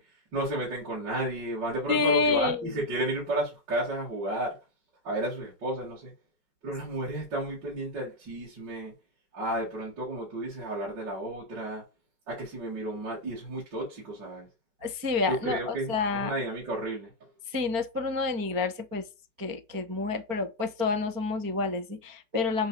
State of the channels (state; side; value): late; left; 4.4 ms